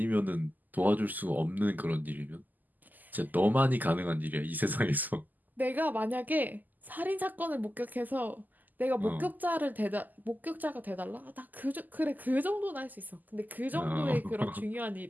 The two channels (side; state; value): left; late; 0.084 ms